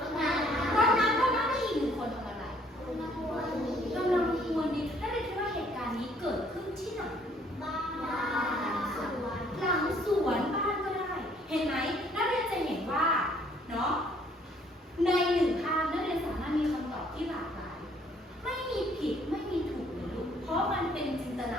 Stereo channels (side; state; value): both; normal; correlation 0.62